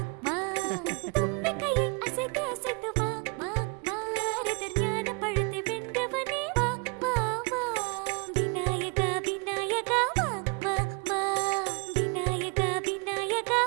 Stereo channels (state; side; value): quieter; left; 33.0 dB